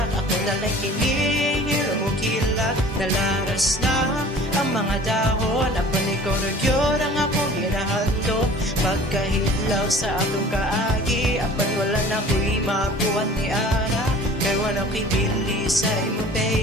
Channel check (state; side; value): normal; both; correlation 0.46